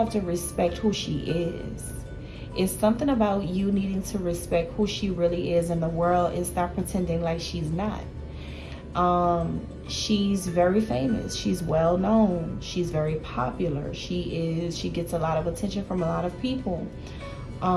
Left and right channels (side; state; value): both; identical; correlation 1.00